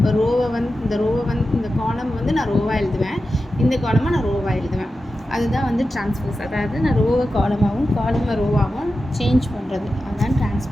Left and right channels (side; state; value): both; normal; correlation 0.92